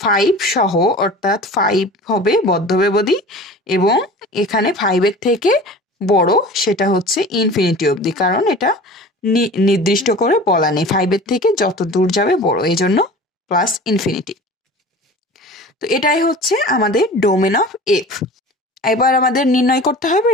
5 সহ, অর্থাৎ 5 হবে বদ্ধব্যবধি, এবং এখানে 5 এর থেকে বড় সেটা হচ্ছে ইনফিনিটি অবধি, কারণ এটা নির্দিষ্ট করে বলা নেই 5 এর থেকে যত দূর যাবে বড়, এই জন্য প্লাস ইনফিনিটি। তো এটাই হচ্ছে আমাদের ডোমেন অফ এফ। এবার আমাদের নির্ণয় করতে হবে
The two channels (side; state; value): both; normal; correlation 0.39